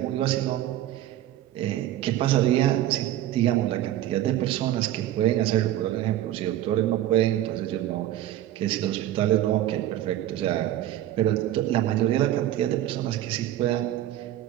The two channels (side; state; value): left; quieter; 13.1 dB